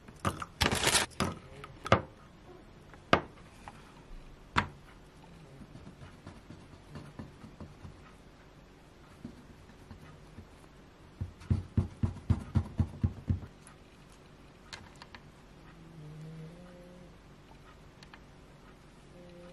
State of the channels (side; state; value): both; identical; correlation 1.00